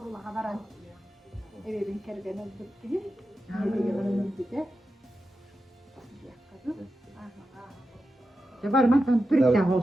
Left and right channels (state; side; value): normal; both; correlation 0.90